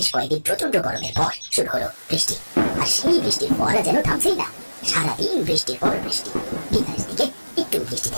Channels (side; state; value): both; inverted; correlation -1.00